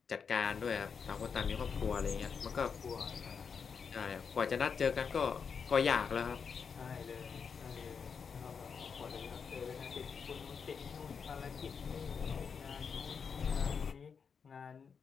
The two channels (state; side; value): quieter; right; 6.1 dB